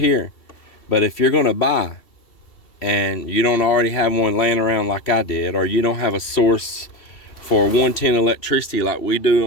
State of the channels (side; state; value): right; late; 2.7 ms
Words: But if you're going to buy and you don't already have one laying around like I did, or you don't have a source for 110 electricity like we